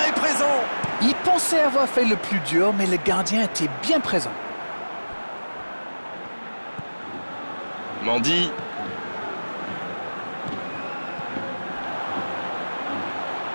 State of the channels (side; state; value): both; inverted; correlation -1.00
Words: est présent! Il pensait avoir fait le plus dur, mais le gardien était bien présent. Mendy.